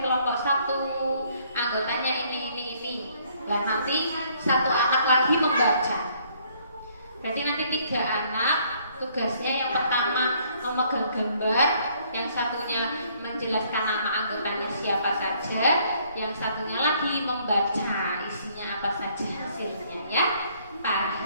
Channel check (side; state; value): both; inverted; correlation -0.64